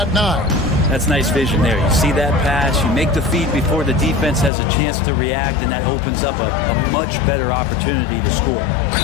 9. That's nice vision there. You see that pass, you make the feed before the defense has a chance to react, and that opens up a much better opportunity to score.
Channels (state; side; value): drops out; right; at 4.5 s